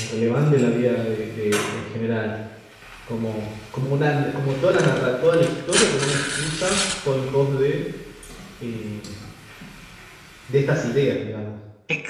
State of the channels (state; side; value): identical; both; correlation 1.00